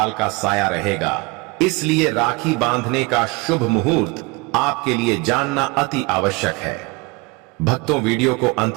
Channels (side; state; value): left; quieter; 25.7 dB